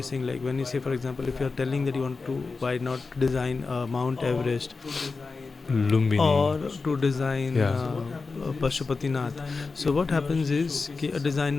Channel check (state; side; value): quieter; right; 4.2 dB